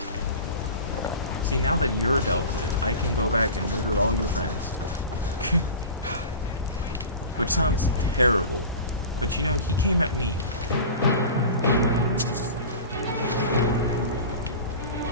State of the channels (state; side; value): inverted; both; correlation -0.34